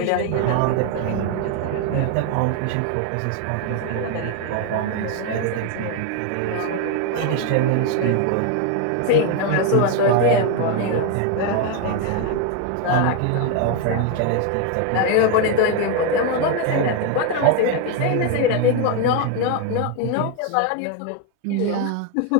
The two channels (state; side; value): different; both; correlation 0.01